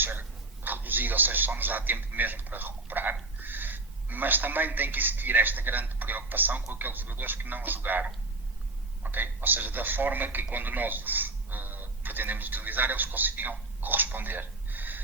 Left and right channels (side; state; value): left; quieter; 3.0 dB